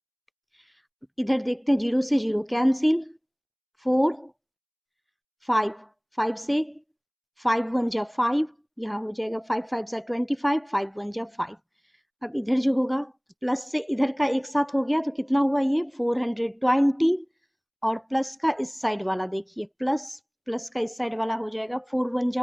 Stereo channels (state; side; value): identical; both; correlation 1.00